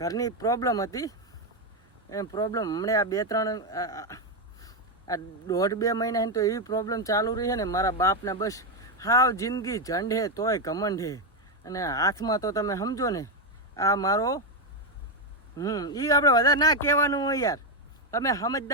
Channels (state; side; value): normal; both; correlation 0.05